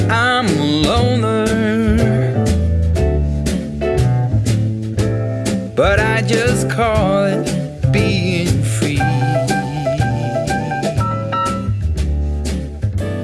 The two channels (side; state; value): both; identical; correlation 1.00